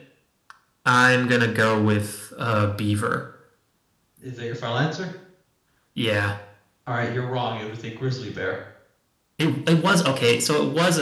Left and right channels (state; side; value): identical; both; correlation 1.00